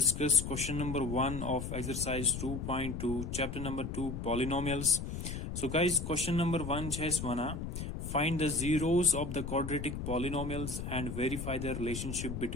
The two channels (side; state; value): left; noise; rumble, 5 dB below the sound